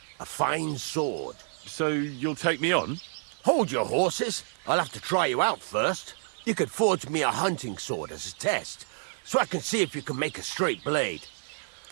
A fine sword. So you'll take me on? Hold your horses. I'll have to try you out first. You could forge me a hunting sword as a test, so I can see if you can make a straight blade.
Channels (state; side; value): silent; left; digital silence